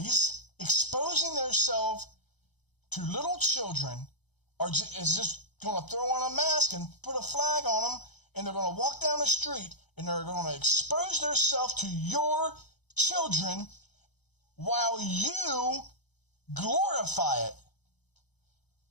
exposing themselves to little children is just going to throw on a mask and put a flag on them, and they're going to walk down the street and they're going to expose themselves to your children while you glorify it.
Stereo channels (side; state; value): right; late; 0.99 ms